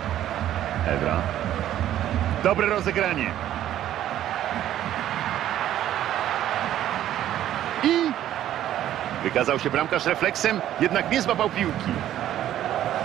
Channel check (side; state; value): left; quieter; 12.1 dB